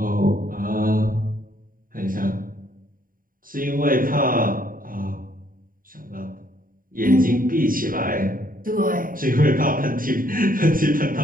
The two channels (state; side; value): late; left; 0.41 ms